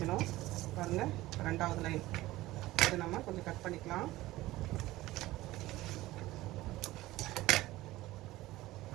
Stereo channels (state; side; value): quieter; left; 17.5 dB